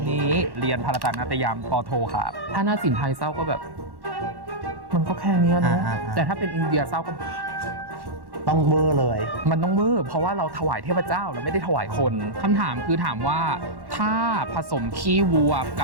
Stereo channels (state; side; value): late; left; 1.1 ms